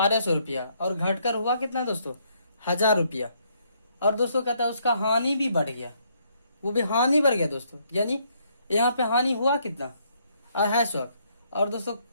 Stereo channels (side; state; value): both; inverted; correlation -0.70